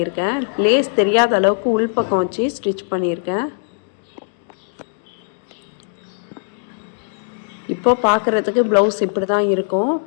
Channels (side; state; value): right; silent; digital silence